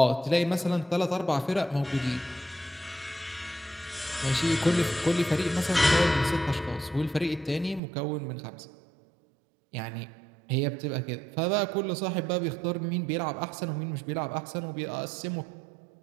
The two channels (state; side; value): drops out; left; at 7.8 s